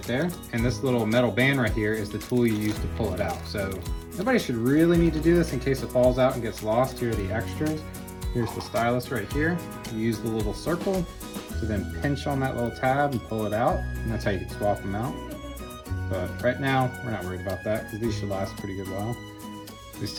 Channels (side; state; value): both; identical; correlation 1.00